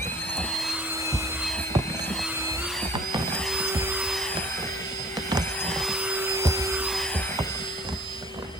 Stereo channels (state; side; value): normal; both; correlation 0.51